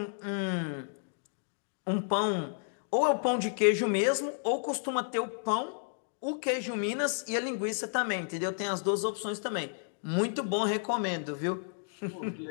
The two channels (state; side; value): silent; right; digital silence